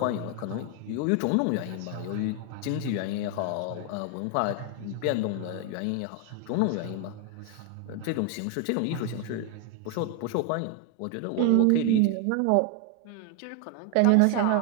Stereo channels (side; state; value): both; different; correlation 0.01